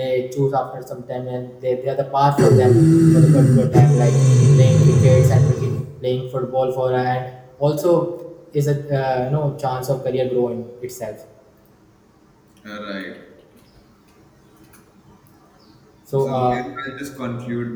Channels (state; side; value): identical; both; correlation 1.00